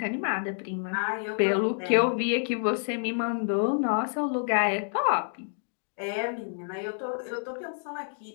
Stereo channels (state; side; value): silent; right; digital silence